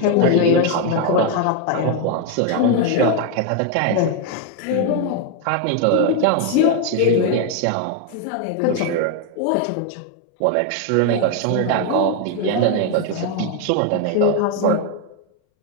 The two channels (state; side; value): different; both; correlation 0.01